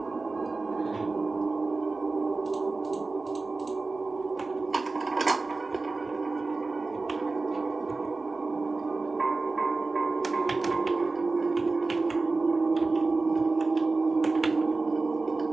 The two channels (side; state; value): left; quieter; 3.6 dB